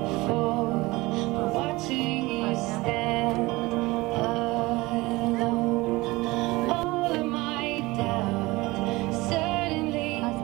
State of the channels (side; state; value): left; quieter; 21.4 dB